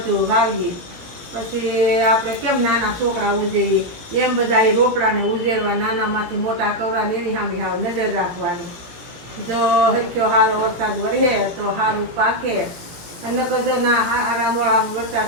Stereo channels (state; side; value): late; left; 18 ms